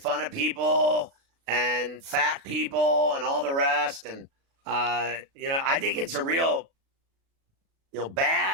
of people and fat people and all the rest. And, I think it's a real,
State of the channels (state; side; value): late; left; 36 ms